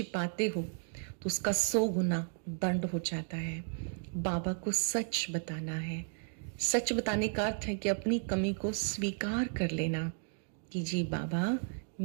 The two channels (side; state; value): left; silent; 55 dB below the other